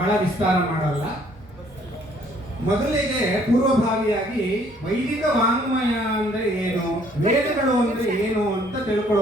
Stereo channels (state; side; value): normal; both; correlation 0.62